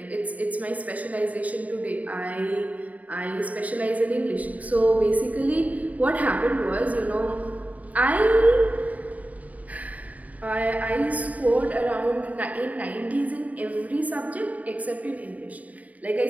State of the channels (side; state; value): left; late; 0.072 ms